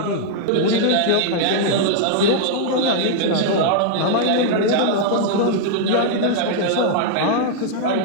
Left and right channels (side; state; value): both; different; correlation -0.01